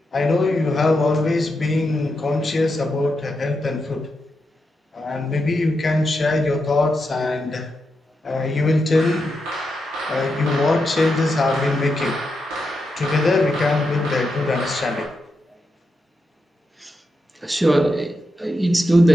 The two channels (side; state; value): both; normal; correlation 0.86